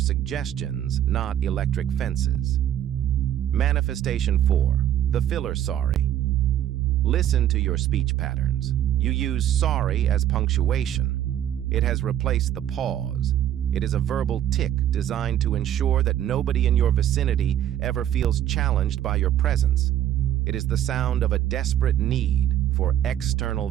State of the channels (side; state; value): left; quieter; 11.3 dB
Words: not electric fences. Manifestation 4. The filler sorry. Listen to your speech patterns. You use sorry as punctuation. It has replaced the pause. It is a verbal tick designed to ensure that nobody in your vicinity ever feels challenged by your presence. It is the sound of a desperate need for external